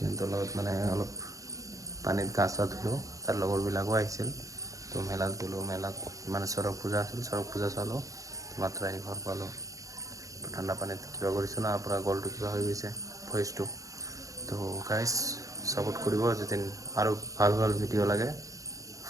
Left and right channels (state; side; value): late; left; 0.16 ms